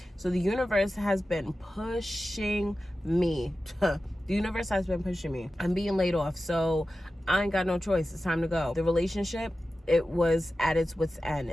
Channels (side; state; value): both; normal; correlation 0.94